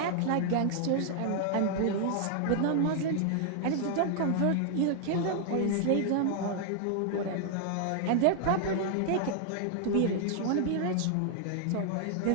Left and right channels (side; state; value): both; different; correlation 0.00